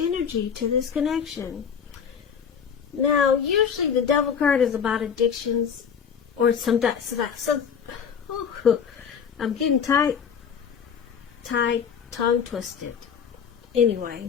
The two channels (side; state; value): right; quieter; 7.2 dB